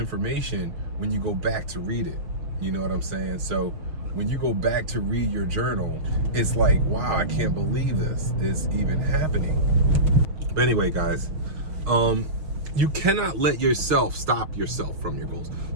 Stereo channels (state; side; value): late; left; 6.3 ms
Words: when you go back to read it. You know what I'm saying? So when you go back to read your journal, it's like, wow, I can't believe this is even happening. But anyway, guys, you cannot let yourself stop yourself from your goals.